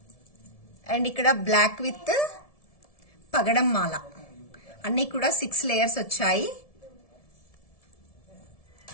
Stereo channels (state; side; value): late; right; 1.7 ms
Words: And ఇక్కడ బ్లాక్ విత్ పగడం మాల. అన్ని కూడా 6 లేయర్స్ వచ్చాయి.